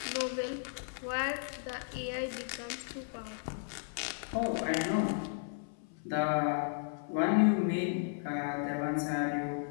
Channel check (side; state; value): right; silent; 55 dB below the other